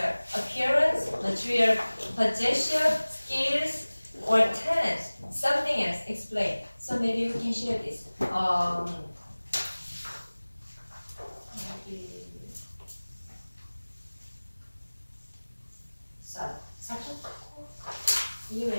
Appearance, material possession, skills, or talent? Something else. Explain. So maybe we can share this. You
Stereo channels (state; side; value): inverted; both; correlation -1.00